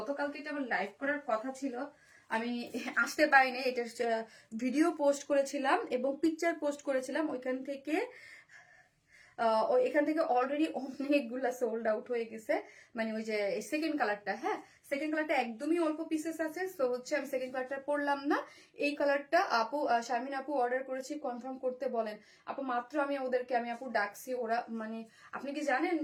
এটা আমার লাইভ করার কথা ছিল, আমি আসতে পারিনি। এটার ভিডিও পোস্ট করেছিলাম এবং পিকচার পোস্ট করেছিলাম, ওইখান থেকে এখান থেকে অলরেডি অনেকগুলা সোল্ড আউট হয়ে গেছে। মানে ওই যে সেকেন্ড কালারটা, হ্যাঁ সেকেন্ড কালারটা একদমই অল্প পিসেস আছে, সো হচ্ছে আমি সেকেন্ড কালারটা পরলাম না। এই কালারটা আপু শারমিন আপু অর্ডার করেছি, কনফার্ম করতে বলেন আপু। মাত্র আমি ওদেরকে আমি আপু ডাকছি, ওরা মানে আপনি কি জানেন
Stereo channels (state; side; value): identical; both; correlation 1.00